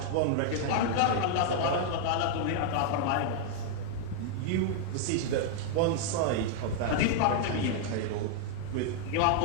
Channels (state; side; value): different; both; correlation 0.00